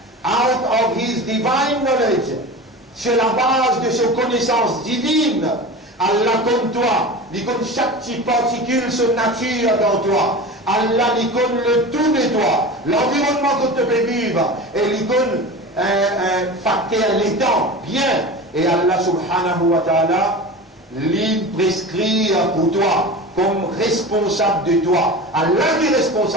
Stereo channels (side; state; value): both; normal; correlation 0.31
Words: of his divine knowledge, sur la base de ses connaissances divines. Allah comme toi, il connaît chaque petite particule, son nature dans toi. Allah il connaît le tout de toi, l'environnement que tu peux vivre, et il connaît facteur les temps, bien. Et Allah subhanahu wa ta'ala, il prescrit pour toi, comme responsable de toi. Allah qui est